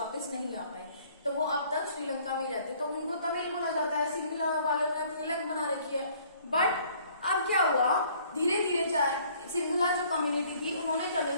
नहीं आ पाए। तो वो अब तक श्रीलंका में ही रहते, तो उनको तमिल बोला जाता है। सिंगला वालों ने अपनी अलग बना रखी है। बट अब क्या हुआ, धीरे धीरे सिंगला जो कम्युनिटी थी उन्होंने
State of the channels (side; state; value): both; inverted; correlation -0.58